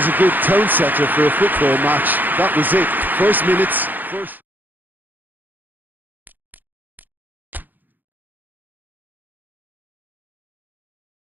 a good tone setter for a football match, that was it. First minutes, first...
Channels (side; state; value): left; late; 0.087 ms